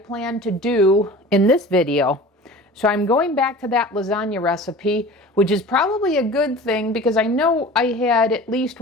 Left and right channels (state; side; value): normal; both; correlation 0.39